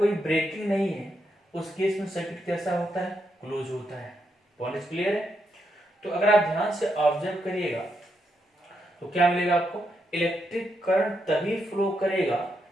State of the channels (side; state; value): both; normal; correlation 0.81